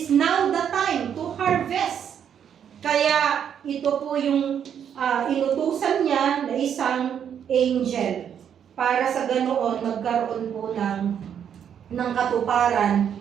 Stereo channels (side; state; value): left; quieter; 8.6 dB